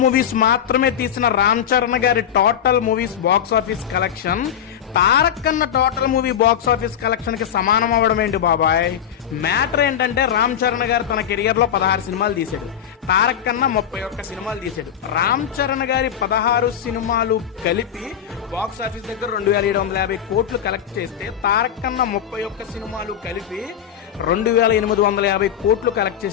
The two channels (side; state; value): right; quieter; 9.2 dB